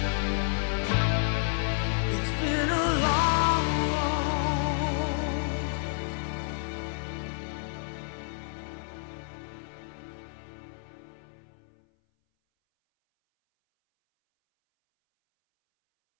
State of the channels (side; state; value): right; silent; 58 dB below the other